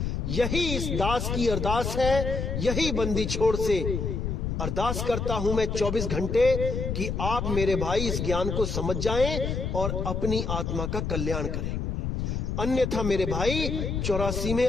यही इस दास की अरदास है, यही बंदी छोड़ से अरदास करता हूं मैं 24 घंटे कि आप मेरे भाई इस ज्ञान को समझ जाएं और अपनी आत्मा का कल्याण करें। अन्यथा मेरे भाई 84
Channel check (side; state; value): left; noise; rumble, 2 dB below the sound